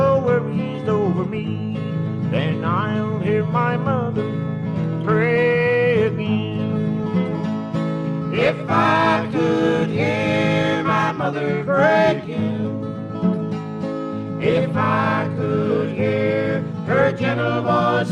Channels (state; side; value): identical; both; correlation 1.00